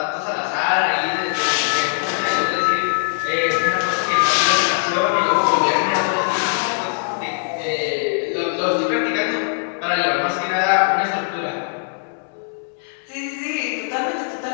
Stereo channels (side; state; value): right; silent; digital silence